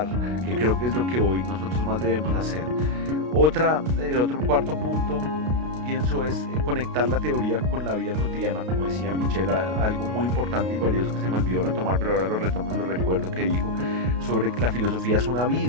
que creo que es lo que hoy nosotros más debemos hacer. El otro cuarto punto, pienso, es conectar la teoría con la vida cotidiana, como decía Michelle, algo muy importante y valioso que se me olvidó retomar, pero ahora lo retomo y lo recuerdo, que dijo sobre que la filosofía es una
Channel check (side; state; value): left; late; 32 ms